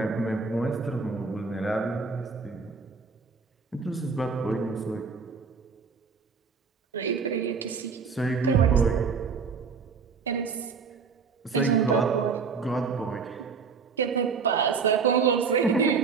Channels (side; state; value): left; quieter; 5.3 dB